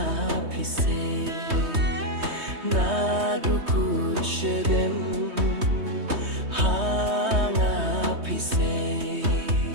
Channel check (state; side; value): late; left; 3.2 ms